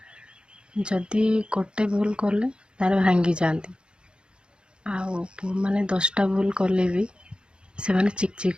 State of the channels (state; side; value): late; left; 0.052 ms